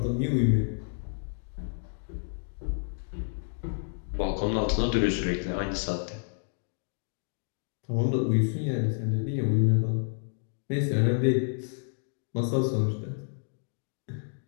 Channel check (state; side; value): silent; right; 58 dB below the other